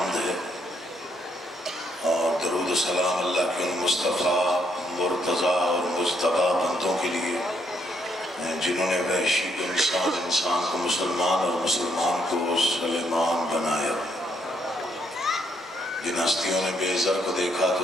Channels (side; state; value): both; normal; correlation 0.73